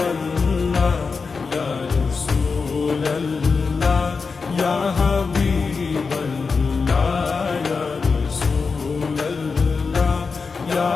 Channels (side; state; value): right; quieter; 4.8 dB